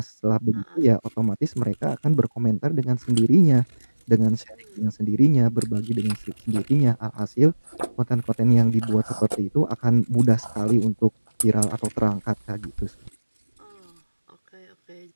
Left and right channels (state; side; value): inverted; both; correlation -1.00